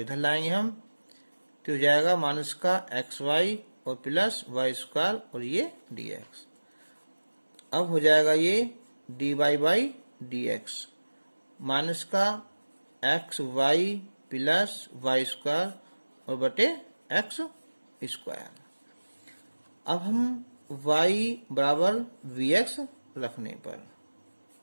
लाएंगे हम, तो हो जाएगा माइनस का एक्स वाई और प्लस वाई स्क्वायर और ये डी एक्स। अब हो जाएगा ये d y by d x minus का x y plus y square और बटे एक्स स्क्वायर। अब हम y बराबर वी एक्स रखने पर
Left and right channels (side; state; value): both; inverted; correlation -1.00